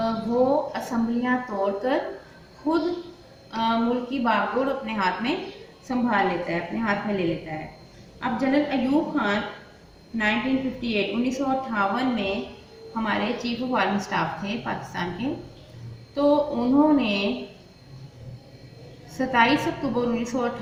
वो असम्बलियाँ तोड़कर खुद मुल्क की बागडोर अपने हाथ में संभाल लेता है, अपने हाथ में ले लेता है। अब जनरल अयूब खान 1958 में हमारे चीफ ऑफ आर्मी स्टाफ थे पाकिस्तान के। तो उन्होंने 27 अक्टूबर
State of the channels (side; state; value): both; identical; correlation 1.00